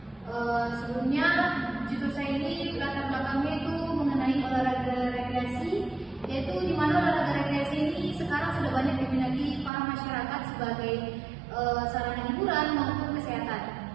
Sebelumnya judul saya ini latar belakangnya itu mengenai olahraga rekreasi, yaitu di mana olahraga rekreasi ini sekarang sudah banyak diminati para masyarakat sebagai sarana hiburan maupun kesehatan.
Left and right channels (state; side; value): drops out; left; at 9.7 s